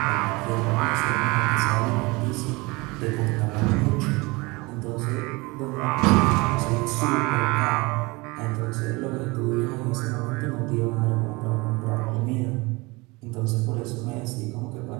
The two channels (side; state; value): left; quieter; 24.7 dB